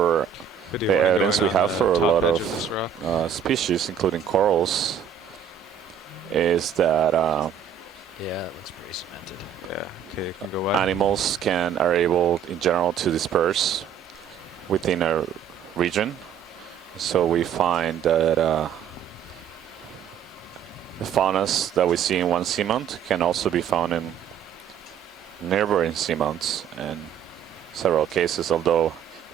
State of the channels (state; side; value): quieter; left; 8.2 dB